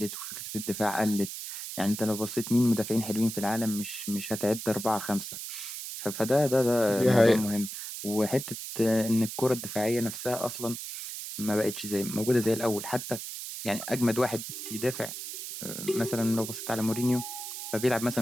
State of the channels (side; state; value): right; noise; hiss, 8 dB below the sound